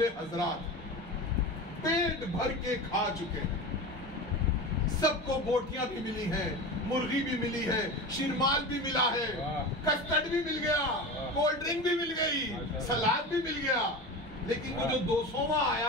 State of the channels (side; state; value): both; normal; correlation 0.28